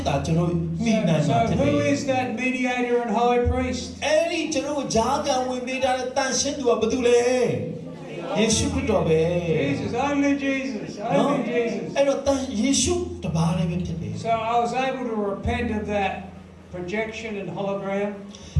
တာကျွန်တော်မိနိုင်မှာဖြစ် So တယ် who is that mediator and high priest? အဲ့ဒီကျွန်တော်ဂျားကန်ဝင်ပေးတဲ့တန်ရှင်းသူကဘာတူလဲယေရှုခရစ်တော်ပဲ Jesus, only Jesus, only Jesus. အဲ့တော့ယေရှုတပါးလည်းပဲဖြစ်တယ် So I was able to repent of that projection and hologram.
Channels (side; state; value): both; identical; correlation 1.00